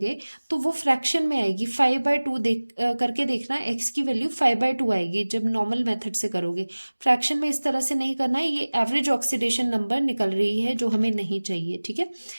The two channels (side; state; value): both; inverted; correlation -1.00